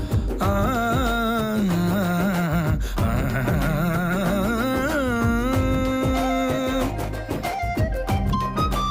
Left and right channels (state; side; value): identical; both; correlation 1.00